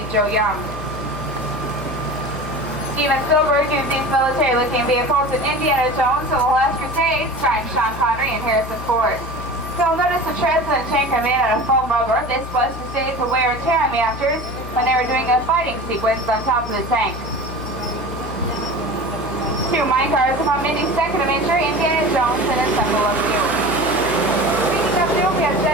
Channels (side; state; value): left; noise; hum, 11 dB below the sound